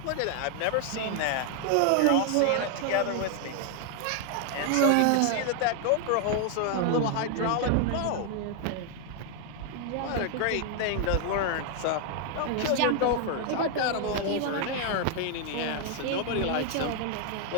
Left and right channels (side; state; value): both; different; correlation 0.00